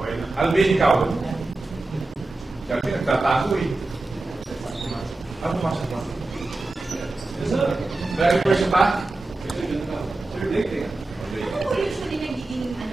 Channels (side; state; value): left; quieter; 3.1 dB